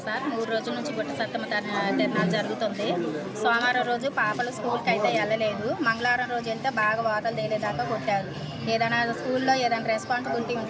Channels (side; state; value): both; identical; correlation 1.00